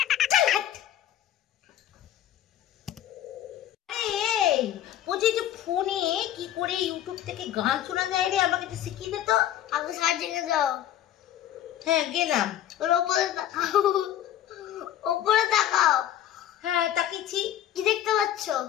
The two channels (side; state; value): right; quieter; 11.6 dB